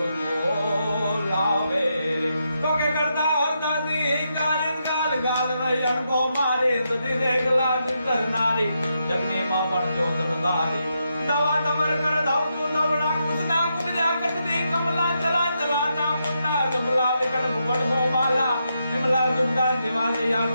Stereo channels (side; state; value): both; inverted; correlation -0.82